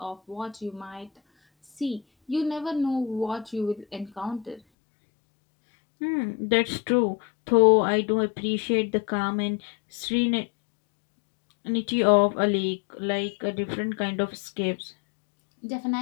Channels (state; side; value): drops out; right; at 4.6 s